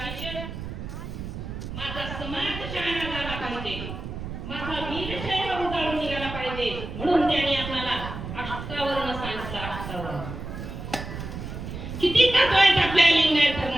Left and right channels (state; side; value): noise; right; rumble, 8 dB below the sound